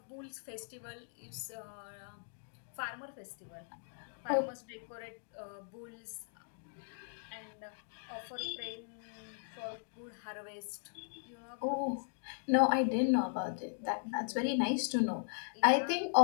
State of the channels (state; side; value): silent; right; digital silence